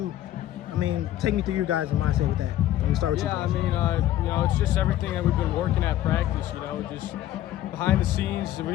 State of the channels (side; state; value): right; quieter; 13.3 dB